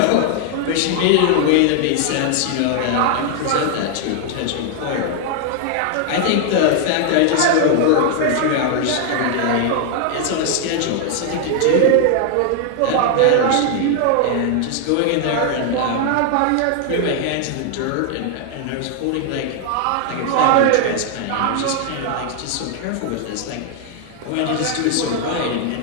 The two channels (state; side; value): different; both; correlation 0.00